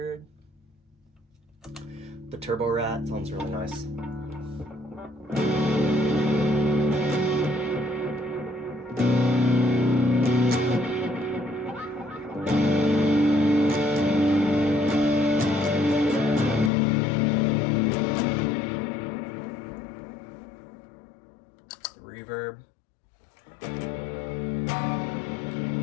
the Turbo Rat sounds really nice.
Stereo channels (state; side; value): drops out; right; at 16.7 s